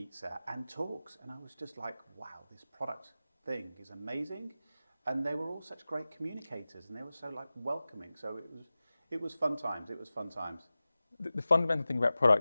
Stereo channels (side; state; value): both; inverted; correlation -0.96